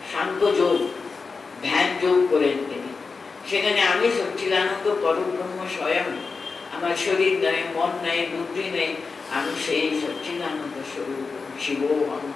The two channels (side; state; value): right; quieter; 4.6 dB